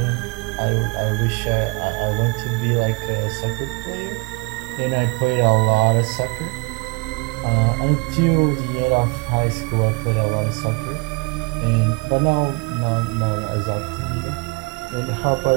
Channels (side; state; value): left; quieter; 29.1 dB